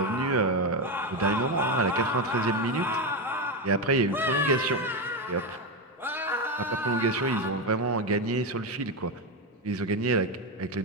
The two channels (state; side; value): normal; both; correlation 0.11